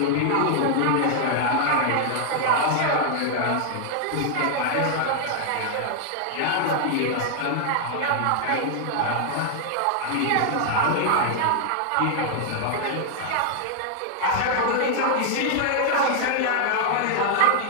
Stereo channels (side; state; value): both; different; correlation 0.00